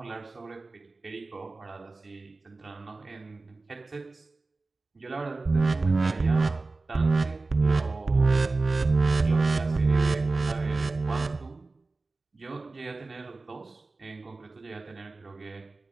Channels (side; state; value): left; quieter; 3.5 dB